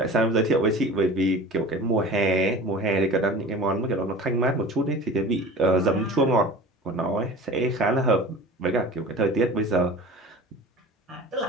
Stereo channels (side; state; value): both; normal; correlation 0.39